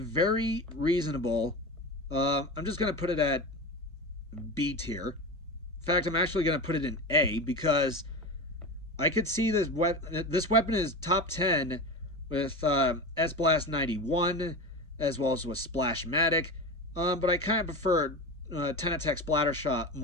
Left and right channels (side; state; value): both; normal; correlation 0.26